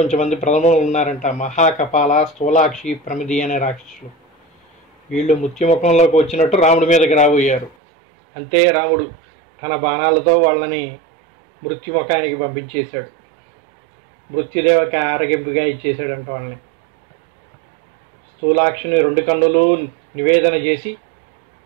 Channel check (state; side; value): drops out; left; at 7.8 s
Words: ప్రథములు ఉన్నారంట. మహాకపాల, స్థూలాక్షి, ప్రమిది అనే రాక్షసులు. వీళ్ళు మృత్యుముఖంలోకి వచ్చినట్టు రాముడి మీదకి రాబోయారు. అంతే రాముడు తన బాణాలతో వాళ్ళని మృత్యుముఖానికి పంపించేశాడు. మృత్యుదేవకి ఆరగింపుగా ఇచ్చేశాడంట వాళ్ళని. స్థూలాక్షిని 2 కన్నులు నివేదన చేసి